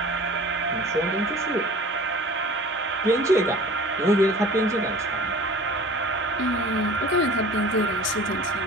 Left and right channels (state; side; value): normal; both; correlation 0.43